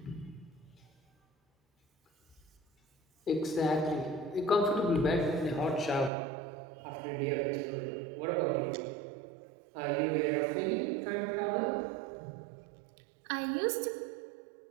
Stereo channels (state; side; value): drops out; left; at 6.1 s